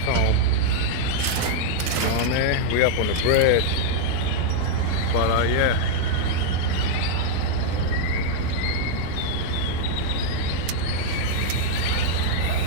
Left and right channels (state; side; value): different; both; correlation -0.01